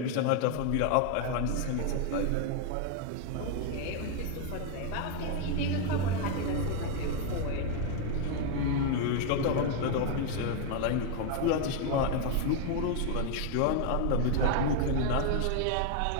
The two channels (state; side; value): different; both; correlation 0.01